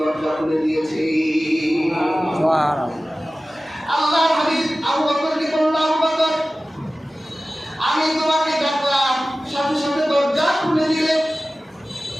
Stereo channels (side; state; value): both; normal; correlation 0.96